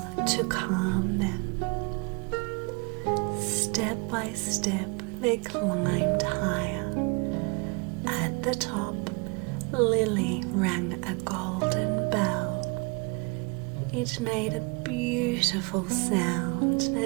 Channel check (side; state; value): left; quieter; 29.8 dB